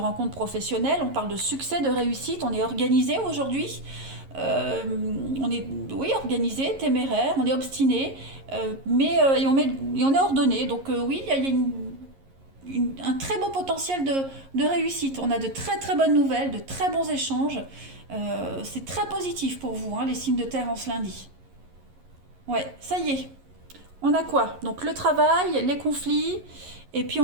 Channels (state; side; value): late; left; 11 ms